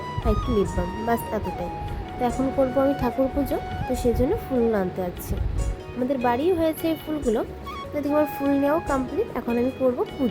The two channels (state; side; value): identical; both; correlation 1.00